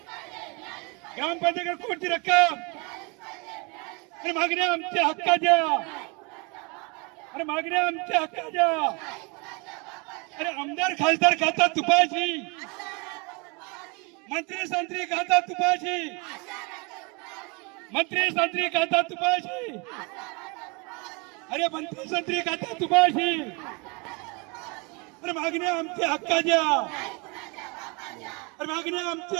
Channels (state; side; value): quieter; left; 30.3 dB